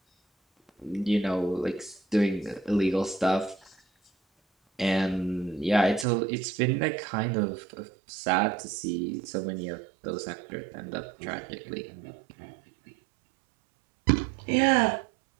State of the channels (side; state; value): left; drops out; at 6.1 s